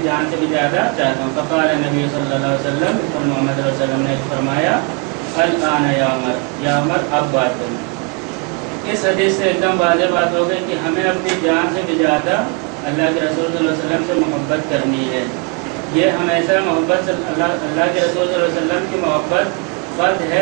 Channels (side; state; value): left; quieter; 30.6 dB